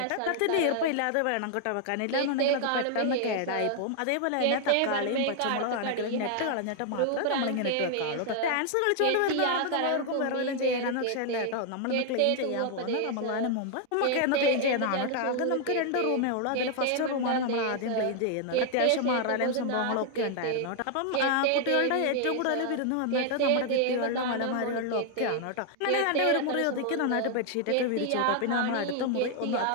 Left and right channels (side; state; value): both; different; correlation 0.00